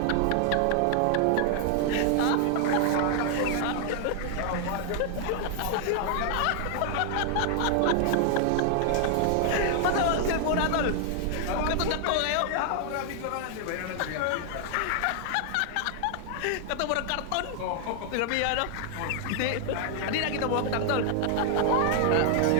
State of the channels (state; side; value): different; both; correlation 0.00